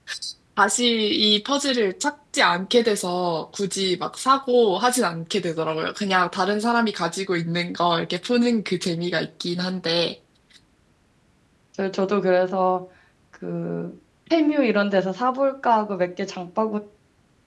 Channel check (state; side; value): identical; both; correlation 1.00